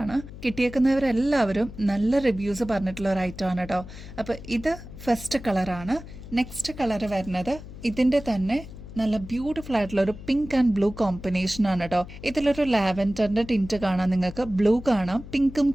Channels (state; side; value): noise; left; hum, 14 dB below the sound